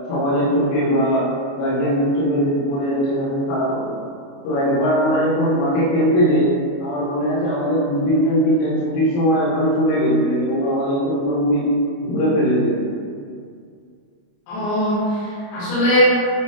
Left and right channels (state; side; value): late; right; 29 ms